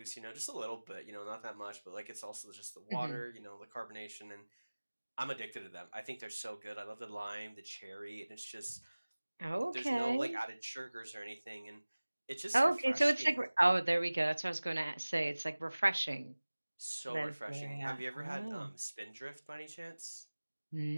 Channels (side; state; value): both; inverted; correlation -1.00